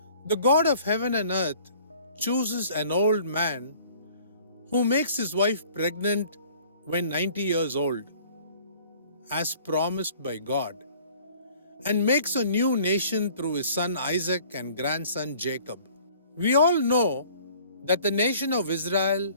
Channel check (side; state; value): both; inverted; correlation -0.52